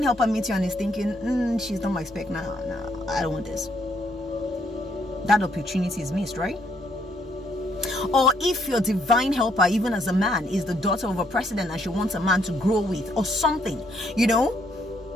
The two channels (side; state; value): both; normal; correlation 0.71